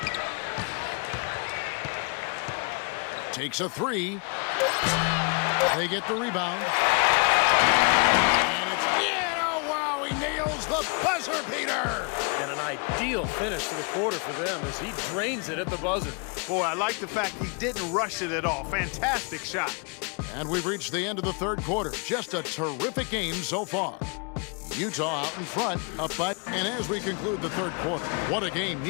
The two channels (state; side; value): quieter; right; 34.8 dB